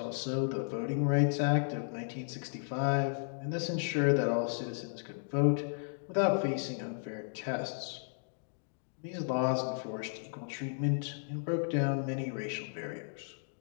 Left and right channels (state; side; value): silent; right; digital silence